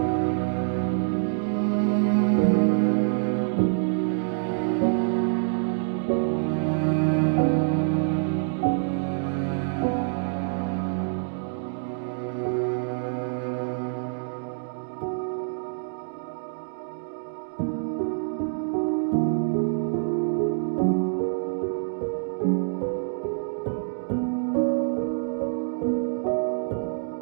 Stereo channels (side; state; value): left; silent; digital silence